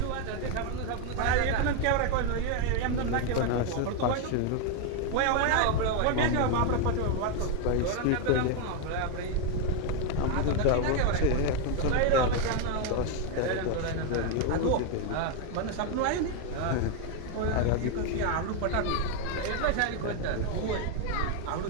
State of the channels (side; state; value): both; different; correlation 0.01